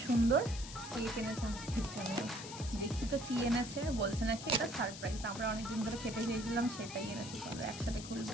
সুন্দর কেক এনেছে আমাদের জন্য। দেখি তো কি এনেছে। বলছে নাকি এটা সারপ্রাইজ। আমরা অনেকদিন ধরে খেতে চেয়েছিলাম, সেটাই এনেছে। চলো একসাথে খুলবো।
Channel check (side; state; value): left; noise; hiss, 11 dB below the sound